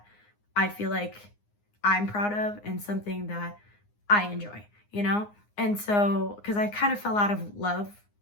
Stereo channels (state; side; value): late; right; 9.7 ms